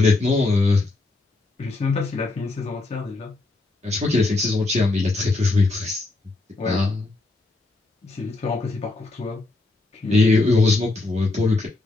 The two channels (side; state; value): right; quieter; 3.2 dB